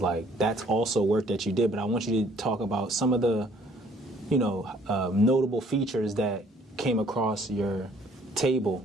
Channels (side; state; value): both; normal; correlation 0.60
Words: like, that's also work that you did, but I want you to talk about some of the, you know, notable features that came across your